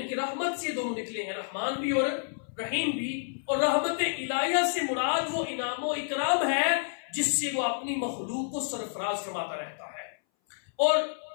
کہ رحمت سے دونوں نکلے ہیں، رحمان بھی اور رحیم بھی۔ اور رحمت الہیہ سے مراد وہ انعام و اکرام ہے جس سے وہ اپنی مخلوق کو سرفراز فرماتا رہتا ہے۔ اور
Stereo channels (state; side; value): silent; right; 58 dB below the other